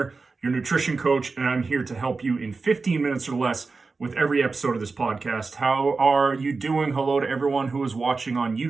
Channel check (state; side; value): quieter; left; 4.1 dB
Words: your nutrition coach, and I'm here to help you in 15 minutes or less with every episode of this podcast. How are you doing? Hello to everyone who is watching on